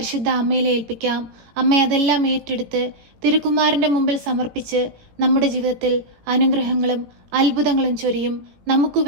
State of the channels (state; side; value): late; left; 17 ms